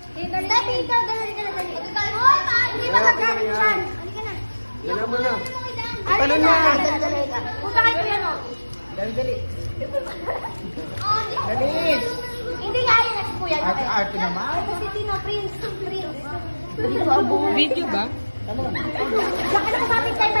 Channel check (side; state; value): both; inverted; correlation -1.00